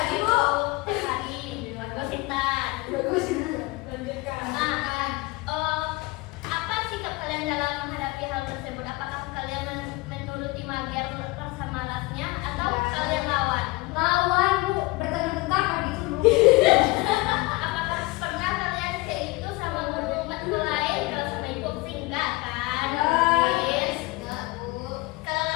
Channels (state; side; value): quieter; right; 22.7 dB